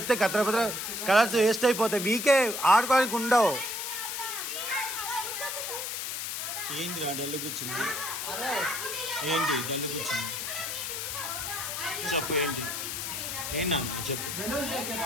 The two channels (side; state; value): left; noise; hiss, 4 dB below the sound